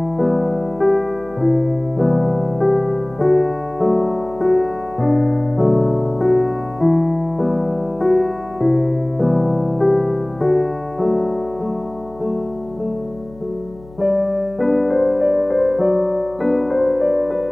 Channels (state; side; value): noise; left; hum, 22 dB below the sound